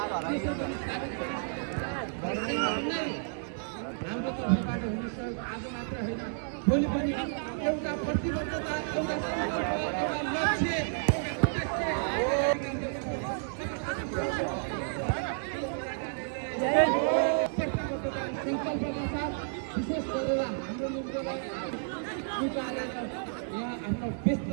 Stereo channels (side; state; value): left; silent; digital silence